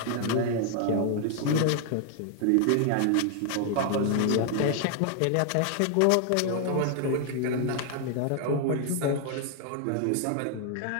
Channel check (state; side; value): different; both; correlation 0.00